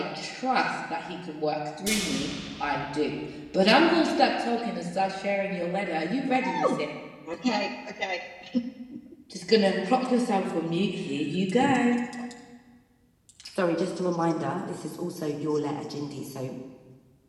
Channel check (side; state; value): both; identical; correlation 1.00